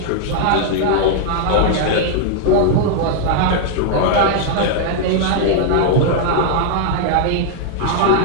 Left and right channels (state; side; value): different; both; correlation 0.00